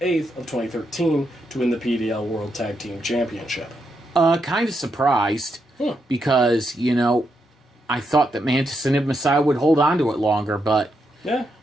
8th of 2013 to win the PDL World Tag Team Championship? Kind of surprised. Because, I thought that Mantis and Ibn Masayo would hold on to it longer, but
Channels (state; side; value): normal; both; correlation 0.81